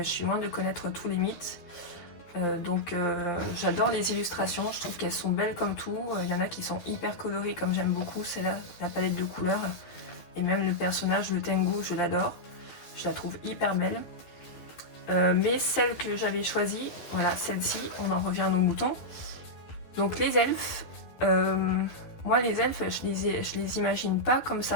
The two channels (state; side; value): late; right; 12 ms